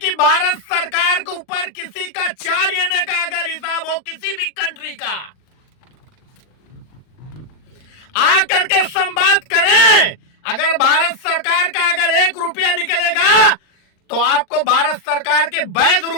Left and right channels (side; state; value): right; late; 39 ms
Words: भारत सरकार के ऊपर किसी का 4 आने का अगर हिसाब हो किसी भी कंट्री का, आकर के संवाद करें। अगर भारत सरकार का अगर 1 रुपया निकलेगा तो आपको भारत सरकार के वैध